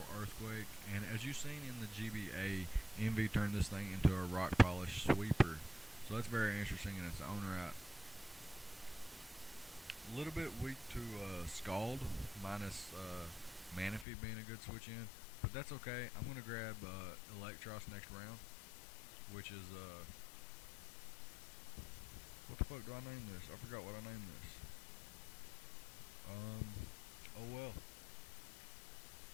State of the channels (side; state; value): right; drops out; at 14.1 s